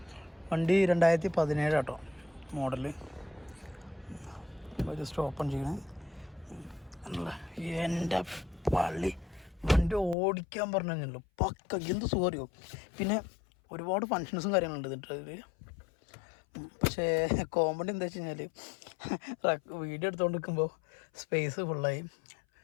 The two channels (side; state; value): right; drops out; at 10.2 s